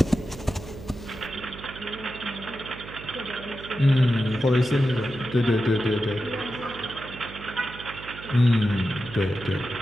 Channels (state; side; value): noise; right; hum, 14 dB below the sound